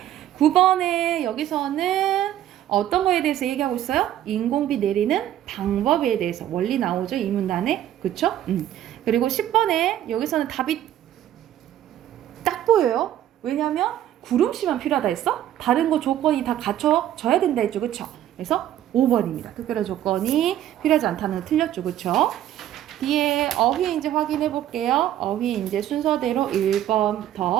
9번에 여기서는 어떤 거에 대해서 얘기하고 있어요? 인공비 내리는 방법에 대해서 원리 나오죠. 이 문단에. 그쵸? 그리고 10번에 여기서는 답이 딱 보여요. 왜냐면 구름씨만 필요하다 했어? 다른 거 조건이 다 갖춰져야 된다 했죠. 그쵸? 그래서 5번입니다. 특별한 조건이 필요하지 않다는 거 틀렸죠. 그쵸? 뒤에 어휘 이제 확인해 볼게요. 어휘 이제 순서대로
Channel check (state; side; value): quieter; left; 12.0 dB